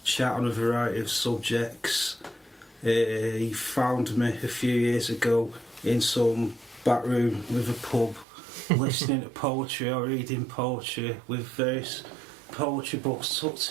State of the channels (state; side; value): drops out; left; at 8.2 s